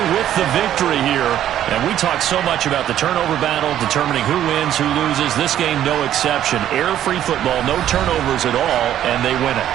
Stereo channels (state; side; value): quieter; left; 11.4 dB